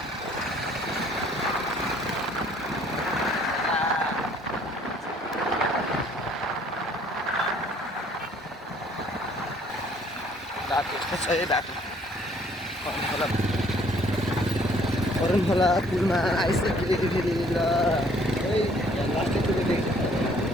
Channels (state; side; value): normal; both; correlation 0.60